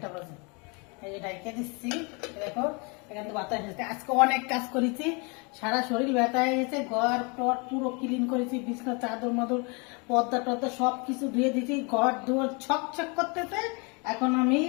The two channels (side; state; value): right; quieter; 31.6 dB